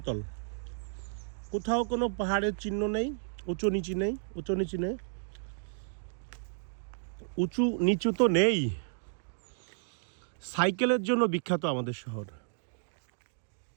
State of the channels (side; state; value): left; silent; digital silence